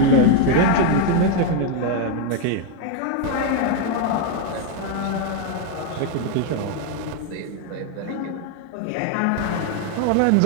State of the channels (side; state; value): both; different; correlation 0.01